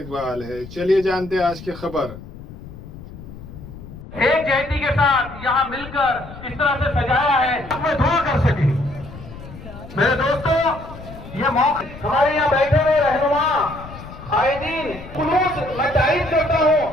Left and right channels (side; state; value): left; noise; rumble, 15 dB below the sound